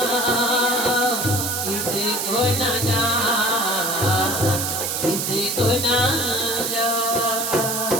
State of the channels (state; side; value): noise; right; hiss, 1 dB below the sound